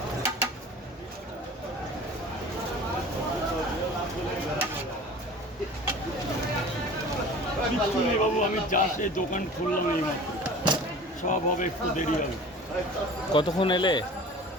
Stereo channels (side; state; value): both; normal; correlation 0.42